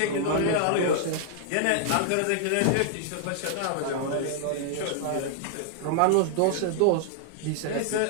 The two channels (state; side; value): different; both; correlation -0.01